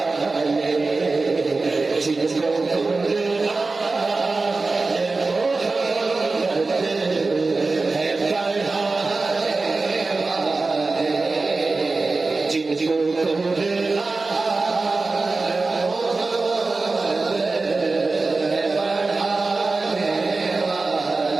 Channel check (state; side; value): quieter; left; 3.7 dB